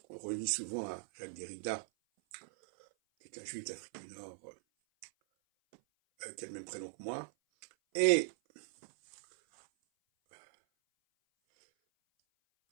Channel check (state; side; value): silent; left; 52 dB below the other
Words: qu'on relie souvent à Jacques Derrida, qui est un juif d'Afrique du Nord, qui a le même prénom que moi. Et